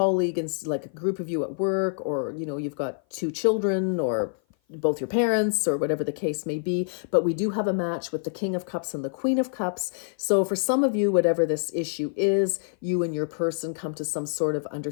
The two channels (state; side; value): silent; right; 56 dB below the other